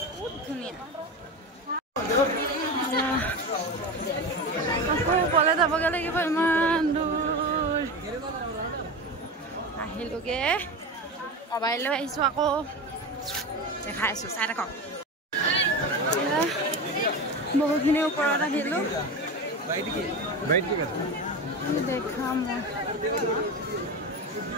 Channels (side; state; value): both; normal; correlation 0.23